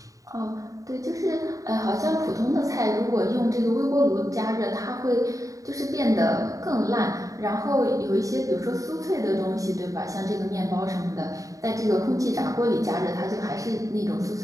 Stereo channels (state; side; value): late; left; 0.16 ms